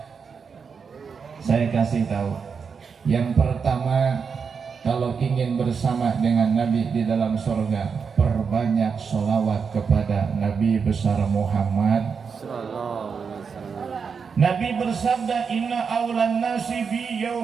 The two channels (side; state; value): left; quieter; 5.9 dB